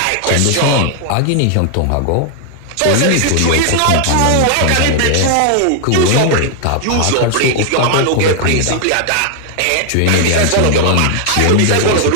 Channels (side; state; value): both; different; correlation 0.00